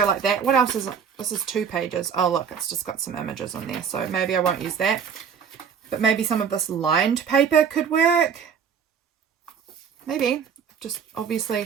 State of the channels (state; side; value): quieter; left; 7.1 dB